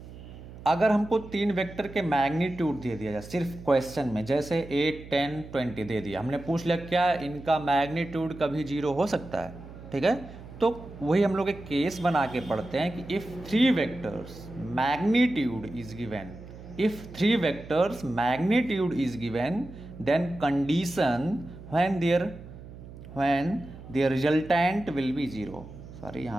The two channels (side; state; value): right; noise; hum, 15 dB below the sound